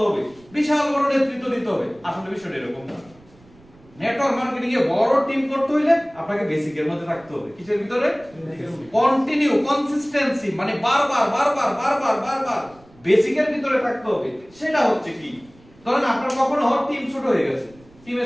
হবে বিশাল বড় নেতৃত্ব দিতে হবে আসলে বিষয়টা এরকম না নেটওয়ার্ক মার্কেটিং এ বড় টিম করতে হইলে আপনাকে বেসিকের মধ্যে থাকতে হবে কিসের ভিতরে কন্টিনিউ কনসিস্টেন্সি মানে বারবার বেসিকের ভিতরে থাকতে হবে সেটা হচ্ছে কি ধরেন আপনার কখনো টিম ছোট হয়ে গেছে টিমে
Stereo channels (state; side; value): noise; right; rumble, 27 dB below the sound